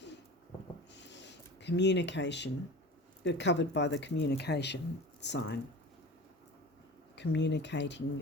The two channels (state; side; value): normal; both; correlation 0.36